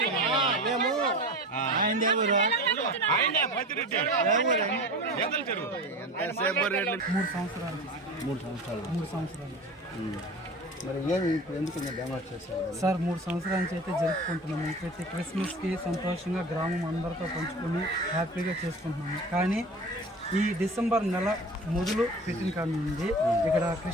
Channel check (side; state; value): both; normal; correlation 0.35